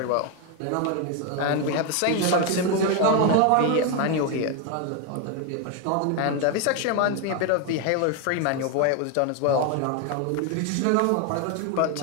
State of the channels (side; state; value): both; different; correlation 0.01